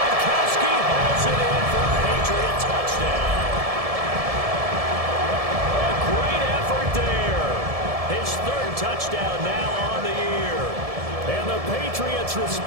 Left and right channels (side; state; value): left; late; 1.7 ms